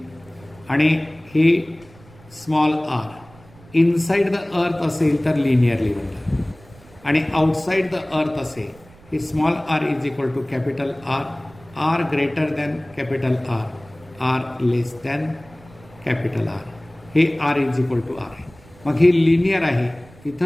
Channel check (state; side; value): noise; right; rumble, 24 dB below the sound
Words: आणि हे small R inside the earth असेल तर लिनियरली बनतं आणि आउटसाइड द अर्थ असेल हे small R is equal to capital R R greater than capital R R less than capital R हे R is equal to R आहे. मग हे लिनियर आहे.